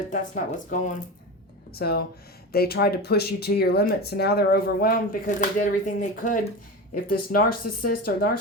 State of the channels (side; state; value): both; normal; correlation 0.25